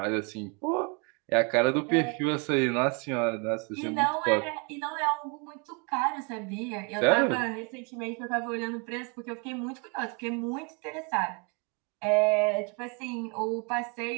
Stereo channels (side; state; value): left; quieter; 33.7 dB